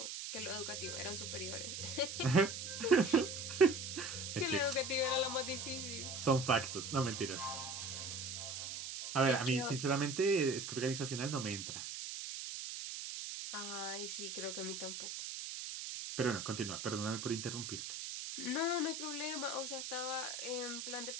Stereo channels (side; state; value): right; noise; hiss, 6 dB below the sound